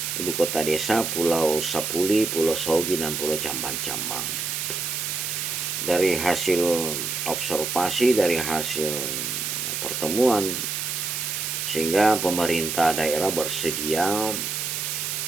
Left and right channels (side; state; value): right; noise; hiss, 2 dB below the sound